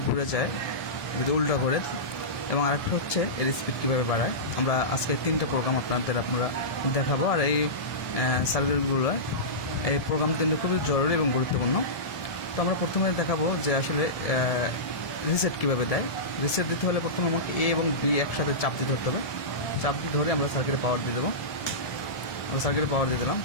ঘুরে যায়, যদি উল্টা করে, এবং আরেকটা হচ্ছে এর স্পিড কীভাবে বাড়ায়। আমরা আজকে তিনটা প্রোগ্রাম আমরা দেখাবো। আর এই সার্কিটগুলো, এই প্রোগ্রাম তিনটা খুবই জরুরি এবং গুরুত্বপূর্ণ। তো আমরা প্রথমে দেখাবো যে আসলে রিসেট কীভাবে দেয়। রিসেট দিতে হলে প্রথমে আমাকে A এবং B একসাথে চাপ দিয়ে ধরতে হবে। চাপ দিয়ে ধরে আমরা সার্কিটে পাওয়ার দিয়ে দেবো। আমরা সার্কিটে পাওয়ার দিয়ে দিলাম।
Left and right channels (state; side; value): late; right; 1.7 ms